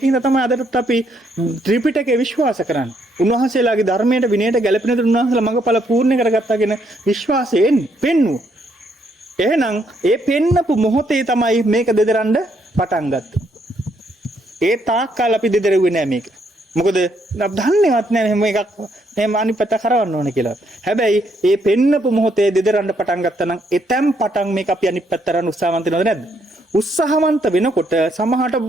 තමයි අදටත් අපි ත්‍රිපිටකේ විශ්වාස කරන්නේ. උන්වහන්සේලාගේ ධර්මයට විනයට ගැළපෙන දේ උන්වහන්සේලා මඟඵල පූර්ණ කරගත්තාගෙන විශ්වාසයෙන් පෙන්වුවා. එහෙනම් ඒ පෙන්නපු මොහොතේ තමයි මේක දෙදරන්න පටන් ගත්තේ. ඒ තාක්කල් අපි දෙදරුවේ නෑ මේක. මොකද දන්නේවත් නෑ මෙහෙම එකක් මෙහෙම අනිත් පැත්ත කරවන්න ඕනේ කියලා. හැබැයි ඒ පෙන්නපු මොහොතේ දෙදරන්න පටන් ගත්තා නම් එතෙන් පටන් මේක අපි අනිත් පැත්ත කරන්න උත්සාහවන්ත වෙනවද නැද්ද? උත්සාහවන්ත වෙනකොට සමහරට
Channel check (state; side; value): normal; both; correlation 0.73